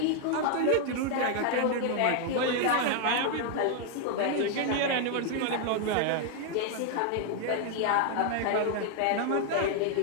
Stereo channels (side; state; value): both; different; correlation 0.00